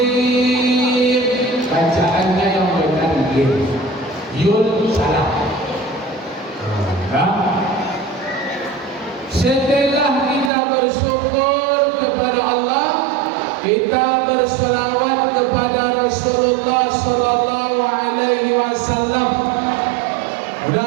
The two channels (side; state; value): left; drops out; at 10.5 s